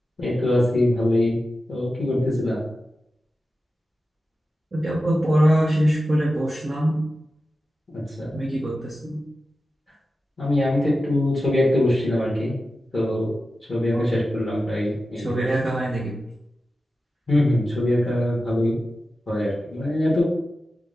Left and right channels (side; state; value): both; normal; correlation 0.93